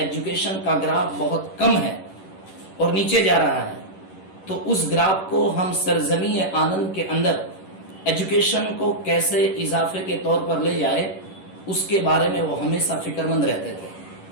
کا گراف بہت کم ہے اور نیچے جا رہا ہے. تو اس گراف کو ہم سرزمین آنند کے اندر ایجوکیشن کو کیسے اضافے کے طور پر لے جائے، اس کے بارے میں وہ ہمیشہ فکر مند رہتے تھے.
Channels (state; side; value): late; right; 11 ms